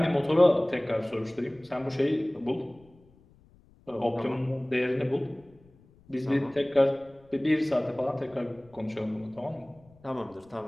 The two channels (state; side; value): noise; left; rumble, 28 dB below the sound